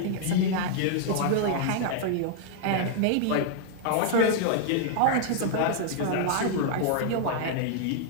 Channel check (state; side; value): different; both; correlation -0.01